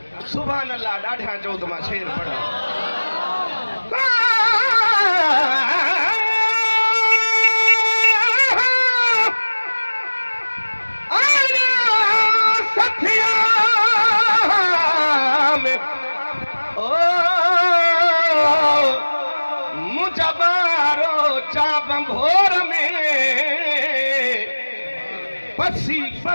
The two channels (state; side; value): inverted; both; correlation -1.00